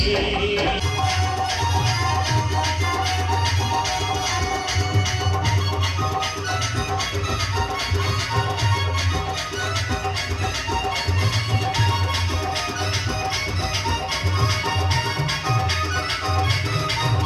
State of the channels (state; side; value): identical; both; correlation 1.00